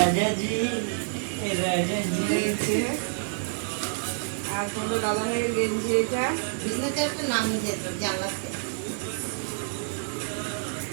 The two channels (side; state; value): left; silent; 60 dB below the other